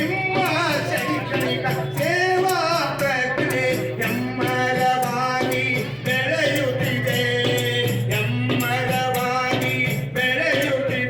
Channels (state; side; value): identical; both; correlation 1.00